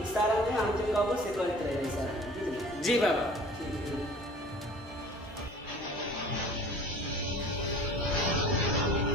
इशारा में हम जे कहबो से करत रहे इशारा जी बाबा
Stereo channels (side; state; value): both; normal; correlation 0.46